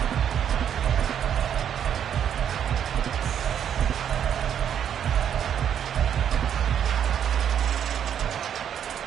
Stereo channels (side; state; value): left; quieter; 9.0 dB